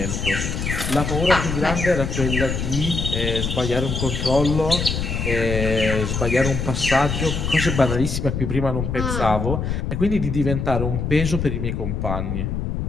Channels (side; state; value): left; noise; rumble, 2 dB below the sound